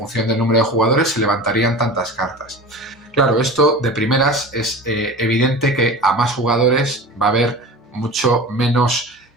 del número de jugadores se levantarían tantas cartas. Claro, esto de primeras es evidente que a más jugadores va a haber mucho menos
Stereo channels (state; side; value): normal; both; correlation 0.34